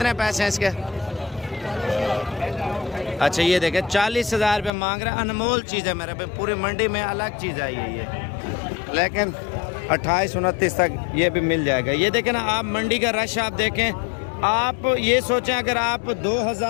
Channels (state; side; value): drops out; right; at 4.7 s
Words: पैसे हैं इसके? अच्छा ये देखें 40,000 रुपये मांग रहे हैं, अनमोल चीज़ है मेरे भाई, पूरी मंडी में अलग चीज़ आई है ये, लेकिन 28-29 तक ये भी मिल जाएगा। ये देखें ना आप, मंडी का रश आप देखें, आप ये सोचें अगर आप